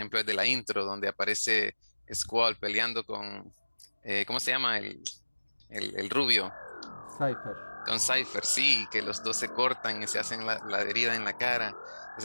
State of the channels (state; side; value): inverted; both; correlation -1.00